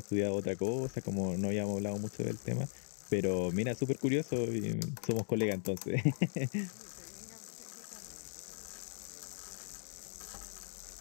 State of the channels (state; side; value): silent; right; digital silence